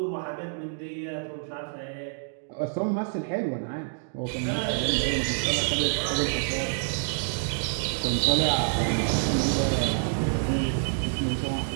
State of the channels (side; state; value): left; silent; digital silence